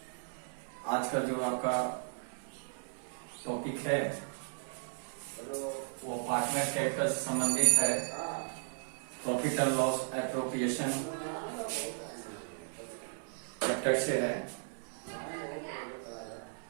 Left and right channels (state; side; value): silent; left; 54 dB below the other